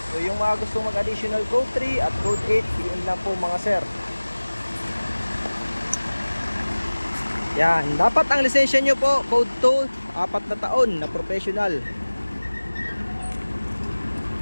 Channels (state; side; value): inverted; both; correlation -1.00